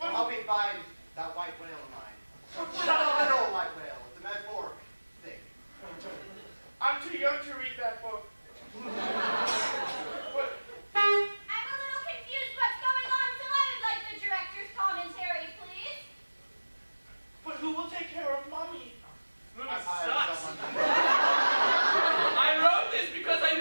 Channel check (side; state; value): both; inverted; correlation -1.00